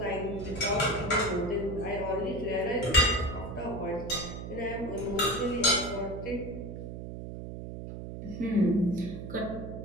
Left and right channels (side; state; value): right; noise; hum, 8 dB below the sound